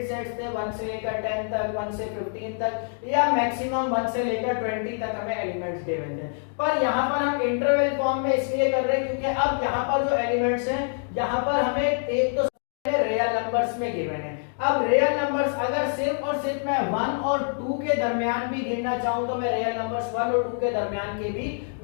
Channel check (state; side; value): silent; right; 61 dB below the other